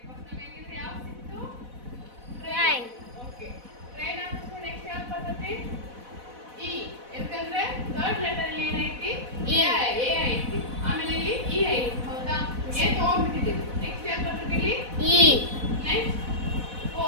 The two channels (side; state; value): left; late; 4.1 ms